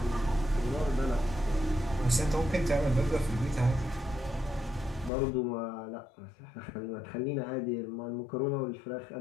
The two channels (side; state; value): right; drops out; at 5.1 s